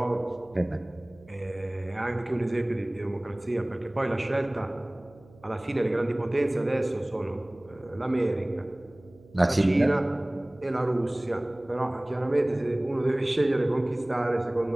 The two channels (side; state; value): right; noise; hum, 25 dB below the sound